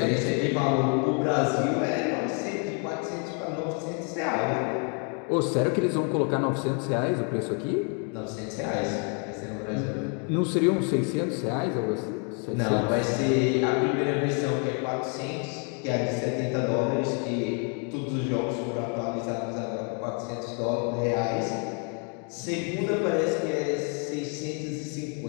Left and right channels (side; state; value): right; quieter; 39.2 dB